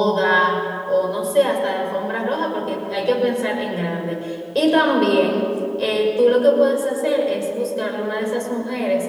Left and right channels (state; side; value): identical; both; correlation 1.00